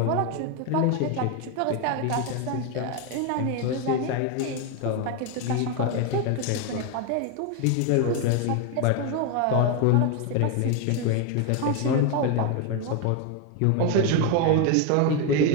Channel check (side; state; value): both; different; correlation 0.02